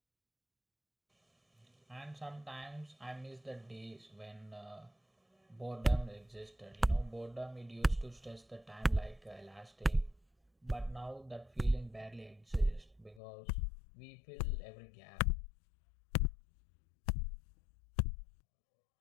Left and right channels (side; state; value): right; drops out; at 13.2 s